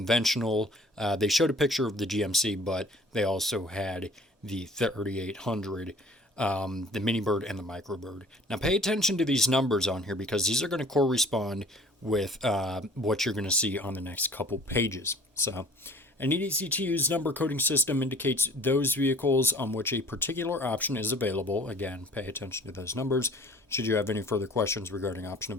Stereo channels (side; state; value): both; normal; correlation 0.50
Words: They showed a picture of the GMC, but they also had the 3800. The mini bird and the microbird. Now pay attention to these numbers on here because these are going to correspond with what you're going to see on the next couple pages. So an easy-to-use number coding system indicates those vehicles on which a particular option is available. Again, pay attention to those numbers. Should you have any further questions regarding option